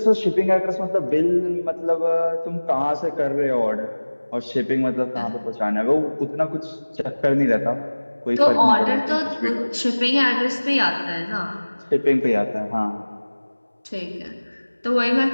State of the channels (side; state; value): both; inverted; correlation -1.00